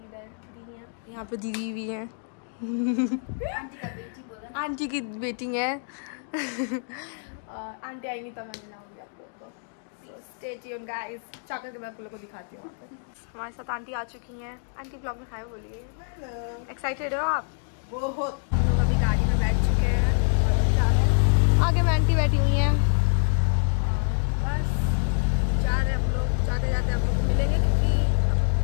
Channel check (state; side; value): silent; right; 61 dB below the other